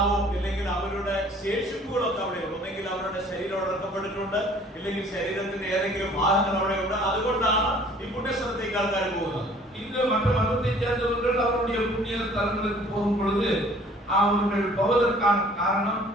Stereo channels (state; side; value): normal; both; correlation 0.54